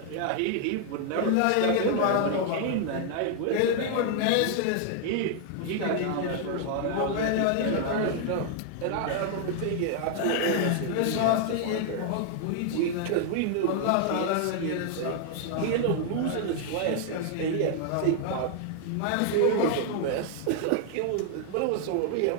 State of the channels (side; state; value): both; different; correlation 0.00